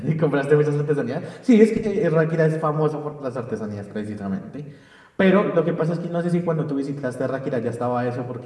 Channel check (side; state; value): both; identical; correlation 1.00